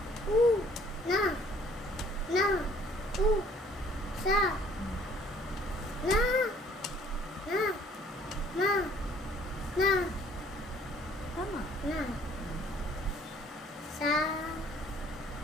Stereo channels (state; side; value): normal; both; correlation 0.59